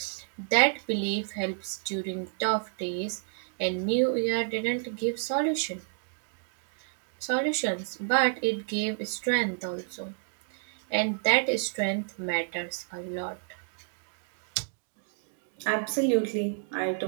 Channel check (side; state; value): left; silent; digital silence